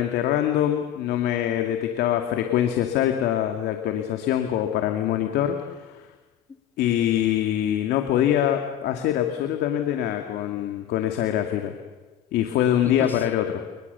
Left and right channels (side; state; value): right; quieter; 10.7 dB